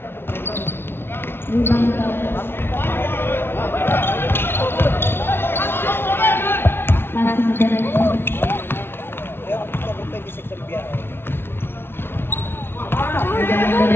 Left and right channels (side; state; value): right; late; 0.11 ms